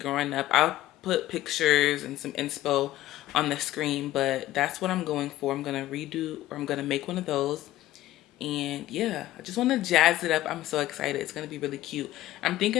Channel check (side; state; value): right; quieter; 15.1 dB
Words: up? I'll put pictures and some inspo on the screen, but that's what I'm going for. I'm gonna redo, or I'm gonna make one of those. And yeah, I just want to jazz it up. I'm so excited. It's gonna be really cute. I'm